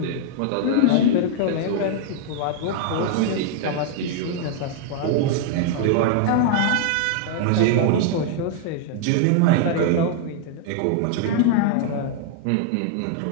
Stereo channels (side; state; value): both; different; correlation -0.01